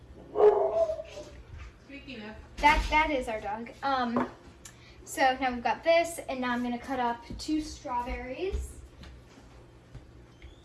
Speaking of, That is our dog. So now we've got this, and now I'm gonna cut up 2 strawberries.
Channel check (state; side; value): identical; both; correlation 1.00